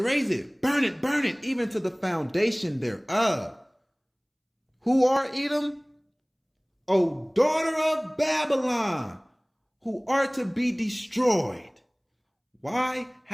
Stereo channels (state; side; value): identical; both; correlation 1.00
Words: burn it, even to the foundation thereof. Who are Edom? O daughter of Babylon, who are to be destroyed. Why?